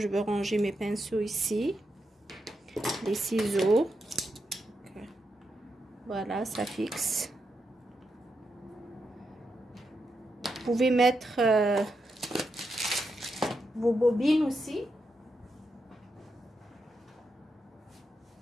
veux ranger mes pinceaux ici. Les ciseaux. Voilà, ça fixe. Vous pouvez mettre vos bobines aussi.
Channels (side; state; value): both; normal; correlation 0.85